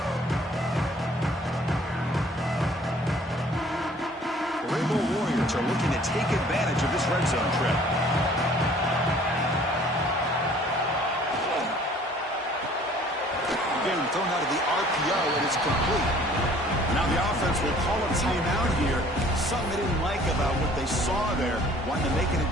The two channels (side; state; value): both; normal; correlation 0.54